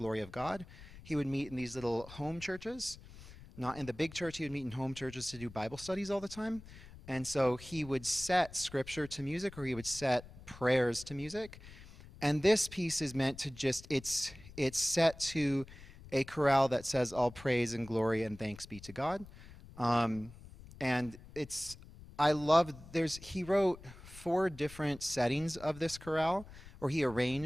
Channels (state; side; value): noise; left; rumble, 18 dB below the sound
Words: of God. He would meet in these little home churches, not in the big church. He would meet in home churches to do Bible studies all the time. And so he would set scripture to music, or he would set prayers to music. And this piece is meant to just, it's set to a chorale that says all praise and glory and thanks be to God. And it's, I love, he wrote 4 different settings of this chorale, or he